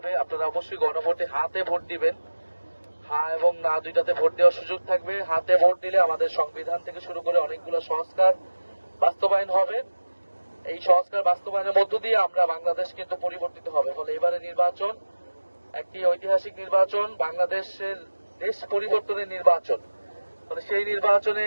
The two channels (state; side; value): inverted; both; correlation -1.00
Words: আপনারা অবশ্যই গণভোটে হাতে ভোট দিবেন। হ্যাঁ এবং না দুইটাতে ভোট দেওয়ার সুযোগ থাকবে। হাতে ভোট দিলে আমাদের সংবিধান থেকে শুরু করে অনেকগুলো সংস্কার বাস্তবায়ন হবে। এই সংস্কার বাস্তবায়নের মধ্য দিয়ে আমরা বাংলাদেশ কিন্তু পরিবর্তিত হবে। ফলে এবারে নির্বাচন একটি ঐতিহাসিক নির্বাচন, বাংলাদেশের দেশ পরিবর্তনের নির্বাচন। ফলে সেই নির্বাচনে